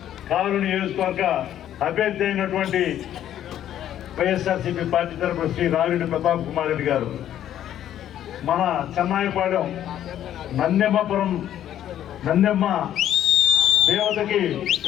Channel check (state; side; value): quieter; right; 11.2 dB